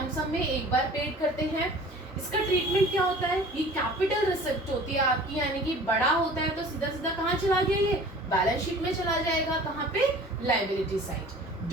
में एक बार पेड करते हैं। इसका ट्रीटमेंट क्या होता है, ये कैपिटल रिसिप्ट होती है आपकी, यानी कि बड़ा होता है तो सीधा सीधा कहाँ चला गया, ये बैलेंस शीट में चला जाएगा, कहाँ पे, लायबिलिटी साइड।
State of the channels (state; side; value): normal; both; correlation 0.45